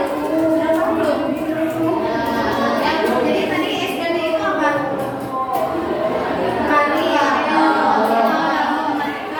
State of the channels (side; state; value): both; identical; correlation 1.00